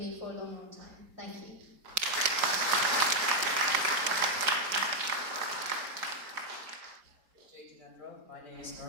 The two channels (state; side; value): late; left; 4.7 ms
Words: for a long, long time. Thank you. My name is